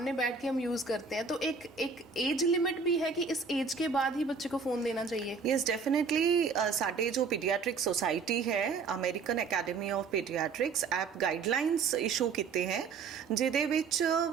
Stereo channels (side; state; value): left; quieter; 5.2 dB